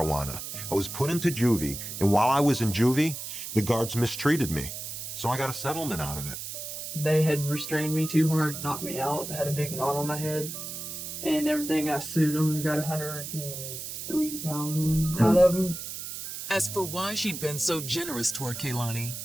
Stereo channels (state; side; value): noise; right; hiss, 8 dB below the sound